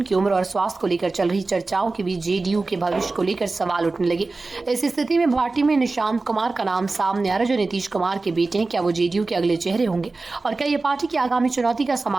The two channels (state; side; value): quieter; left; 3.6 dB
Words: उम्र और स्वास्थ्य को लेकर चल रही चर्चाओं के बीच जेडीयू के भविष्य को लेकर सवाल उठने लगे। इस स्थिति में पार्टी में निशांत कुमार का नाम सामने आ रहा है जो नीतीश कुमार के बेटे हैं। क्या वो जेडीयू के अगले चेहरे होंगे और क्या ये पार्टी की आगामी चुनौती का